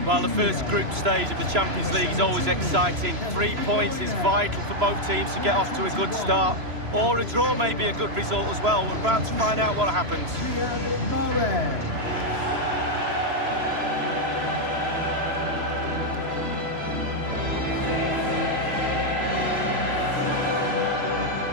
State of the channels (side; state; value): left; late; 3.0 ms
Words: Well, the first group stage of the Champions League is always exciting. 3 points is vital for both teams to get off to a good start. Or a draw may be a good result as well. We're about to find out what happens.